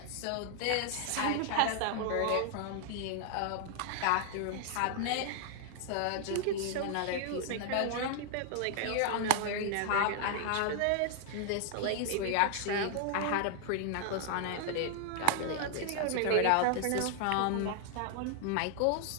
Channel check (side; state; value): both; different; correlation 0.00